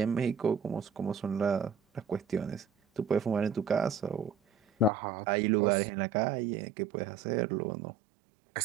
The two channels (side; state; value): left; drops out; at 4.9 s